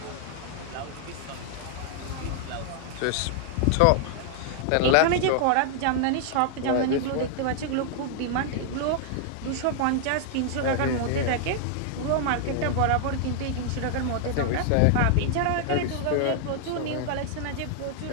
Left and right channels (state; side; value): different; both; correlation -0.01